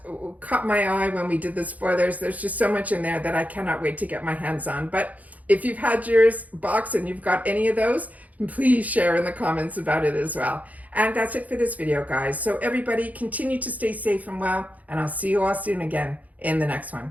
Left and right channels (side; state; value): left; late; 0.075 ms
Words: caught my eye when we did the spoilers. There's just so much in there that I cannot wait to get my hands on. But if you've had yours box and you've got any of those, please share in the comments about it as well. And that's it for this video, guys. So everybody, continue to stay safe and well, and I'll see you all soon again in the next